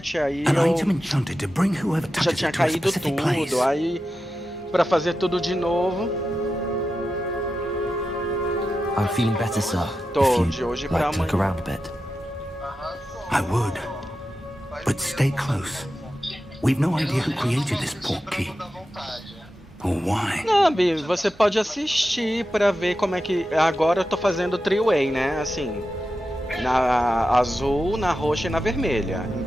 aí An item eu enchanted to bring whoever já touches tinha it to a caído specific place. tudo, aí pra fazer tudo de novo, I'm feeling better, sir. Tô, If de you'd hoje pra like to look amanhã. around a bit. I would. But stay close. We've no idea who created this portkey. Or why. Não, Bi, você pode assistir pra ver como é que... Agora eu tô fazendo three-way, né? Assim, na azul, na roxa e na vermelha.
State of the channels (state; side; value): normal; both; correlation 0.91